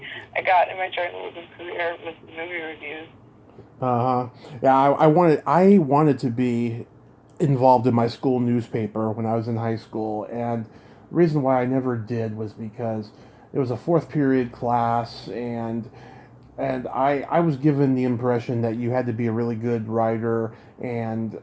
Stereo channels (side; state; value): both; identical; correlation 1.00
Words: I got in my journalism career with the movie reviews. Yeah, I wanted to be involved in my school newspaper when I was in high school, and the reason why I never did was because it was a fourth period class, and I was given the impression that you had to be a really good writer and